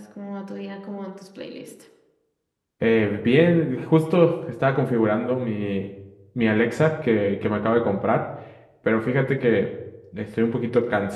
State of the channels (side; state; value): both; identical; correlation 1.00